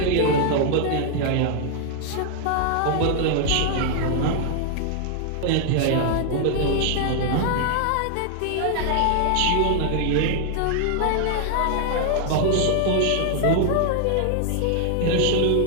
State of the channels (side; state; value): both; different; correlation 0.00